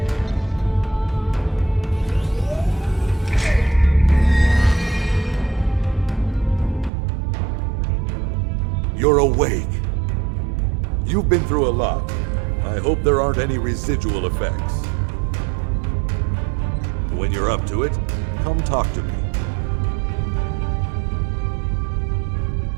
You're awake. You've been through a lot. I hope there aren't any residual effects. When you're up to it, come talk to me.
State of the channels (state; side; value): drops out; left; at 6.9 s